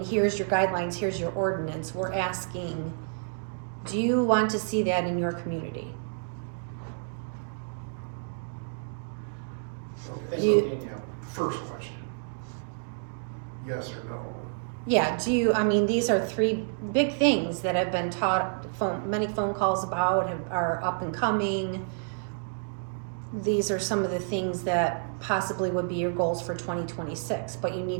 here's your guidelines, here's your ordinance. We're asking, do you want to see that in your community? Okay, Thank You- you, Danielle. first question, yes or no? Yeah, these are three big things that have been many phone calls about, are up and coming. These are some of the things that possibly would be your goals for 2026, but you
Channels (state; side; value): silent; left; digital silence